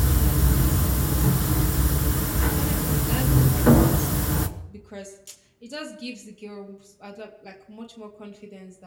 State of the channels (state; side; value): identical; both; correlation 1.00